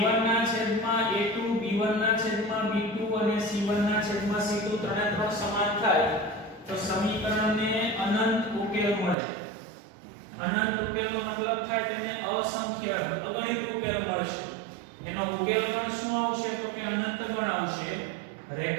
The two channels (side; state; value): left; drops out; at 9.2 s